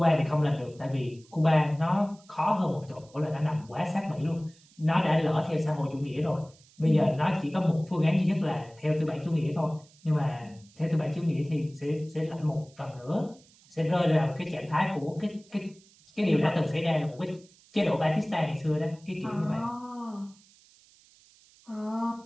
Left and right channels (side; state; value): right; noise; hiss, 28 dB below the sound